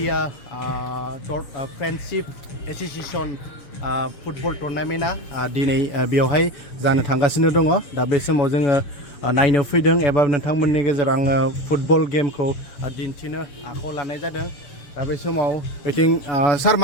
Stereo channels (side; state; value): right; late; 7.0 ms